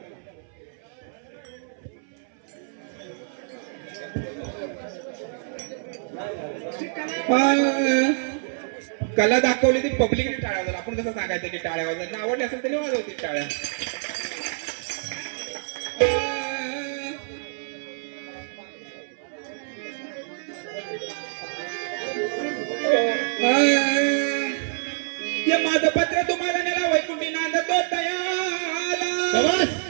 कला दाखवली ती पब्लिकने टाळ्या वाजवल्या. आपण कसं सांगायचं की टाळ्या वाजवल्या आवडली असेल तरी वाजवतील टाळ्या. हे माझं पत्र तुम्हाला नेला वैकुंठी नांदतो दयाला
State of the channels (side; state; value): left; silent; 61 dB below the other